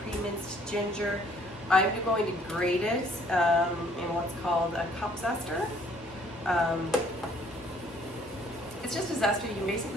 pre-minced ginger. I'm going to grate it in what's called a cup zester. It's just a zester you can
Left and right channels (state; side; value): normal; both; correlation 0.61